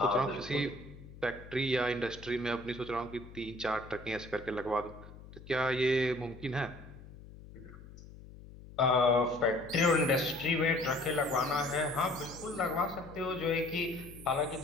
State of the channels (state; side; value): noise; left; hum, 17 dB below the sound